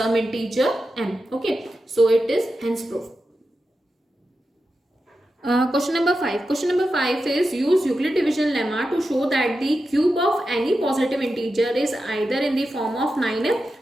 integer m. Okay, so it is hence proof. Question number 5. Question number 5 is use Euclid division lemma to show that the cube of any positive integer is either in the form of 9m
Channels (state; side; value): normal; both; correlation 0.90